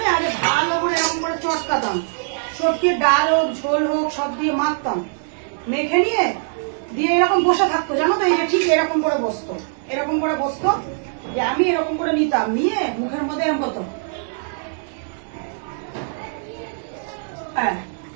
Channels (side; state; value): left; silent; digital silence